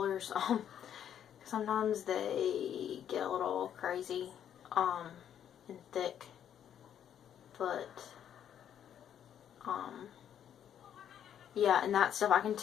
Sometimes they get a little crazy and thick. But, yeah, and that stuff I can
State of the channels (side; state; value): right; quieter; 9.5 dB